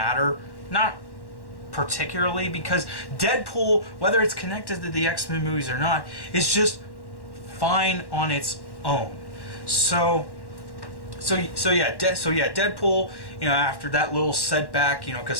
Not particularly, because Deadpool, whether it's connected to the X-Men movies or not, is just fine on its own. So yeah, Deadpool, after that little setback,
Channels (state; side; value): late; right; 1.1 ms